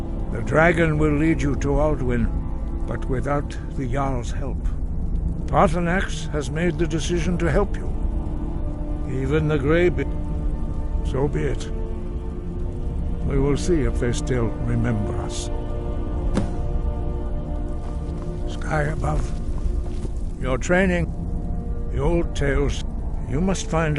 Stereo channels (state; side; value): identical; both; correlation 1.00